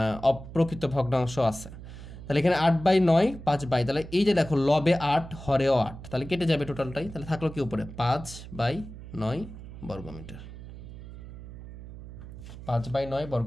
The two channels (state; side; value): noise; right; hum, 13 dB below the sound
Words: অপ্রকৃত ভগ্নাংশ আছে। তাহলে এখানে 8/9 5/, তাহলে এই যে দেখো লবে 8 হরেও 8, তাহলে কেটে যাবে টোটালটাই। তাহলে থাকলো কি উপরে 5/9 বর্গমিটার। 5/9